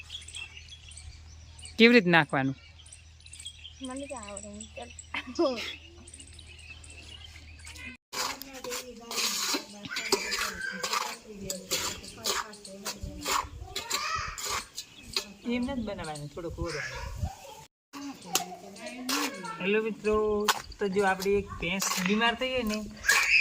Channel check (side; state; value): both; identical; correlation 1.00